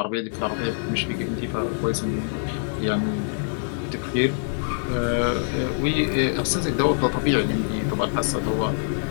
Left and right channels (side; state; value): right; silent; digital silence